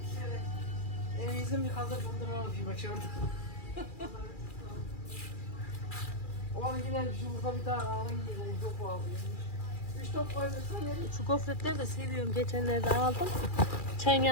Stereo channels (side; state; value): right; late; 2.4 ms